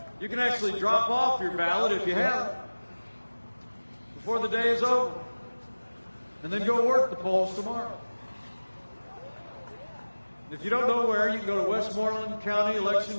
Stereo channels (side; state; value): both; inverted; correlation -1.00